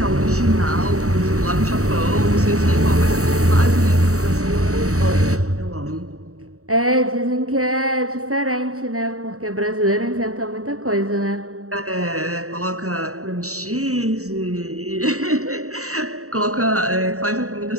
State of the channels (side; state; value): left; late; 0.65 ms